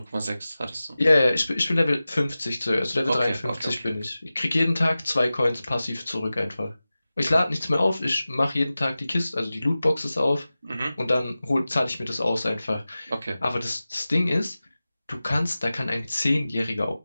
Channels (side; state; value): both; inverted; correlation -0.96